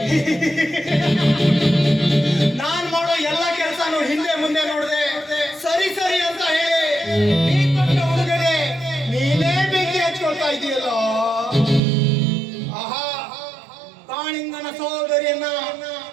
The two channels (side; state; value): left; drops out; at 11.8 s